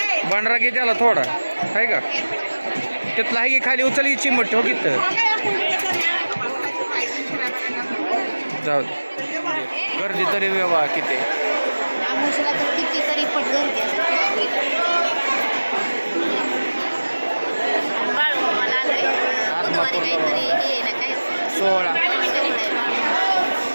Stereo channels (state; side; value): inverted; both; correlation -1.00